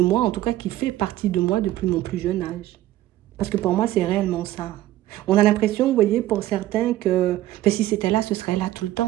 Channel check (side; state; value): left; quieter; 14.8 dB